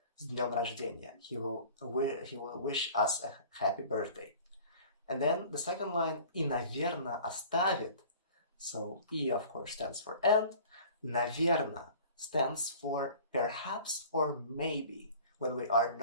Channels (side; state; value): both; inverted; correlation -0.45